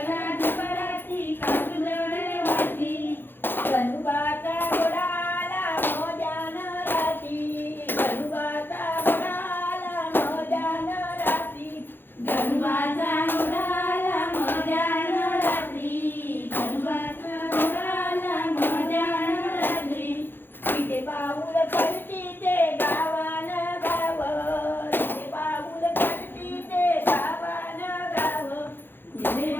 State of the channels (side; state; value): right; late; 0.099 ms